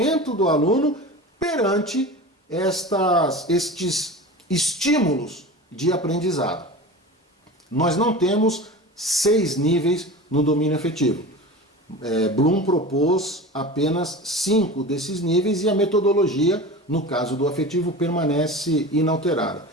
do aluno perante estes estímulos de aprendizado. Nós não temos 6 níveis no domínio afetivo. Bloom propôs apenas 5 desses níveis e a metodologia, no caso do afetivo, permanece inalterada.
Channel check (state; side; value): normal; both; correlation 0.33